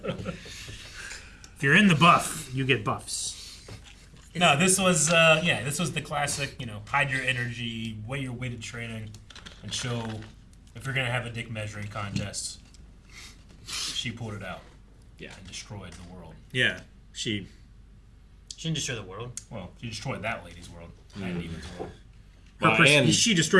If you're in the buff, you get buffs. No, this was the classic. Hide your energy, weigh your weighted training, and show if you're gonna have a dick measuring contest. She pulled it out. Yeah. And destroyed the world. Yeah. She Shouldn't destroy the world. Well, she destroyed that lady's world. That demon's world. she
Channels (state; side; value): identical; both; correlation 1.00